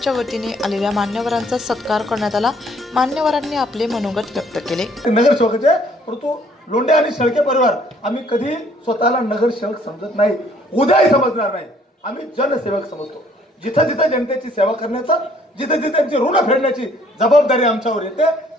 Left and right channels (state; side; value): normal; both; correlation 0.61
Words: वतीने आलेल्या मान्यवरांचा सत्कार करण्यात आला। मान्यवरांनी आपले मनोगत व्यक्त केले। नगरसेवकाचे परंतु लोंढे आणि शेळके परिवार आम्ही कधी स्वतःला नगरसेवक समजत नाही, उद्याही समजणार नाही। आम्ही जनसेवक समजतो। जिथे जिथे जनतेची सेवा करण्याचा, जिथे जिथे त्यांची ऋण फेडण्याची जबाबदारी आमच्यावर येते,